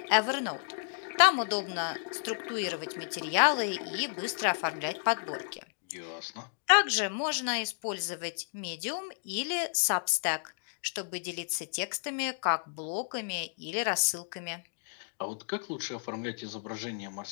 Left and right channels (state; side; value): silent; right; digital silence